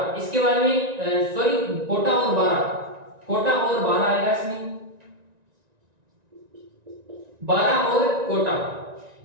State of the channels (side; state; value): left; late; 1.9 ms